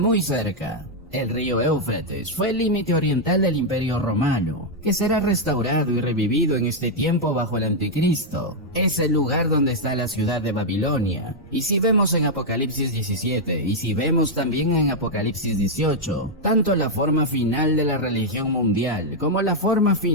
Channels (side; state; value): both; normal; correlation -0.02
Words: cerca. El río Éufrates fue el límite oriental del Imperio Romano, que será restaurado y revivido en este tiempo bajo el Anticristo. Es el lugar donde está la ciudad de Babilonia. Y si vemos en Apocalipsis 17, y si vemos también en Apocalipsis 18, tanto la forma final de la religión mundial como la forma